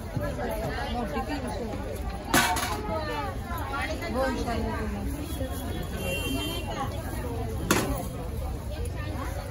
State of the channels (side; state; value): both; identical; correlation 1.00